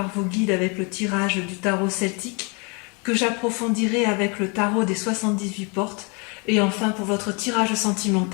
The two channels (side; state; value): right; quieter; 32.2 dB